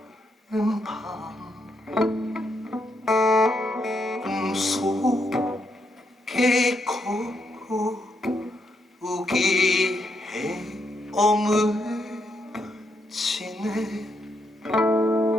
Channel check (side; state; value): both; normal; correlation 0.79